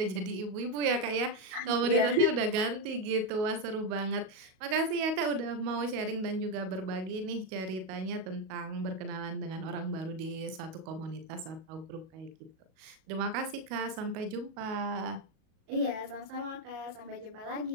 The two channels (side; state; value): left; late; 37 ms